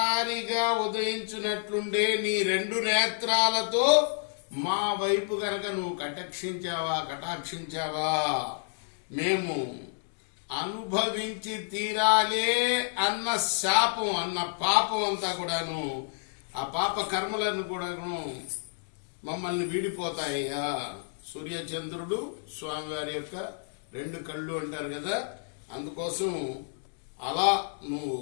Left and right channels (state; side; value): silent; right; digital silence